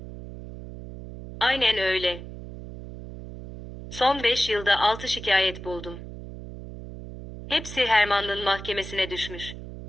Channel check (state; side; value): noise; right; hum, 12 dB below the sound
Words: Aynen öyle. Son 5 yılda 6 şikayet buldum. Hepsi Hermann'ın mahkemesine düşmüş.